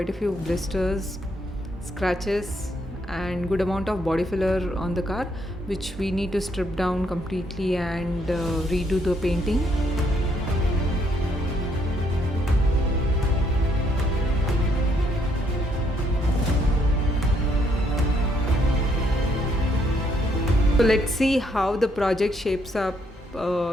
a few blisters, scratches and good amount of body filler on the car, which we need to strip down completely and redo the painting. So let's see how the project shapes up,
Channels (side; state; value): both; normal; correlation 0.72